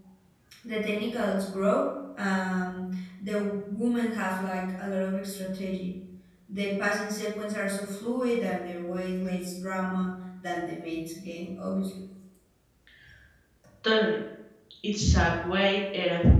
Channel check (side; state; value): both; identical; correlation 1.00